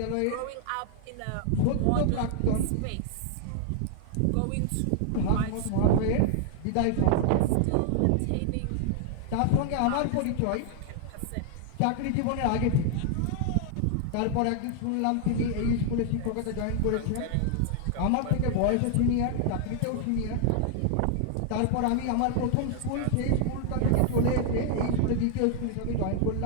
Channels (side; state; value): both; different; correlation 0.00